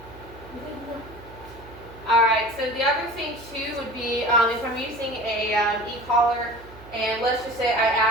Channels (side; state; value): right; noise; hum, 19 dB below the sound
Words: Alright, so the other thing too would be if I'm using a e-collar, and let's just say I